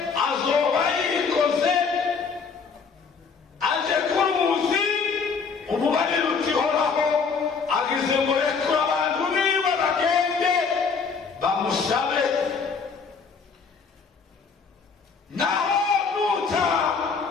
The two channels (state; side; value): quieter; right; 5.4 dB